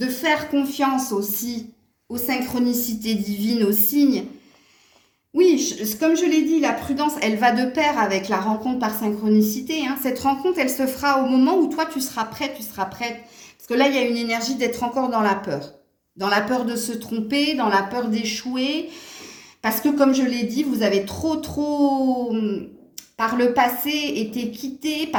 faire confiance aussi aux synchronicités divines, aux signes. Oui, comme je l'ai dit, la prudence, elle va de pair avec la rencontre par synchronicité, hein. Cette rencontre, elle se fera au moment où toi, tu seras prête. Parce que là, il y a une énergie d'être encore dans la peur. Dans la peur de se tromper, dans la peur d'échouer. Parce que, comme je l'ai dit, vous avez trop, par le passé, été quitté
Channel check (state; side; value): identical; both; correlation 1.00